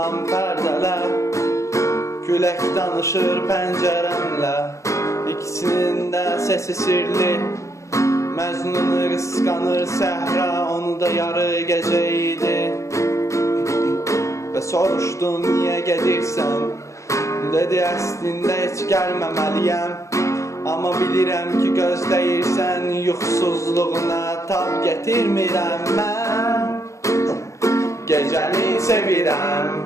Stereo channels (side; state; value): right; late; 0.15 ms